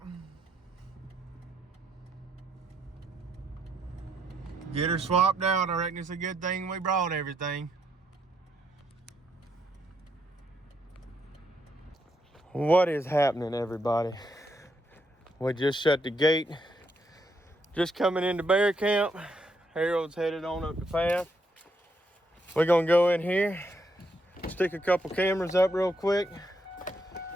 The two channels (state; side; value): normal; both; correlation 0.76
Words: Get her swapped out. I reckon it's a good thing we brought everything. What is happening, everybody? We just shut the gate. Just coming into bear camp. Harold's headed on up the path. We're gonna go in here, stick a couple cameras up real quick,